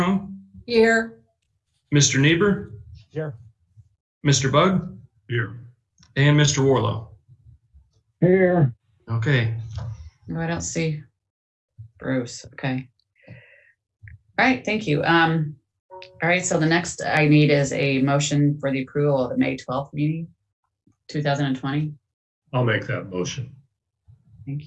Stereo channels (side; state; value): both; identical; correlation 1.00